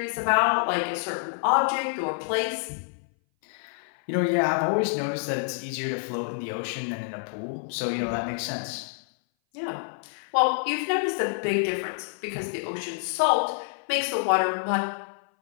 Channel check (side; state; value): right; silent; 58 dB below the other